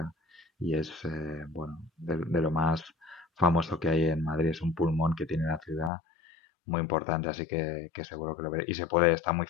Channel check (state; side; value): drops out; right; at 5.9 s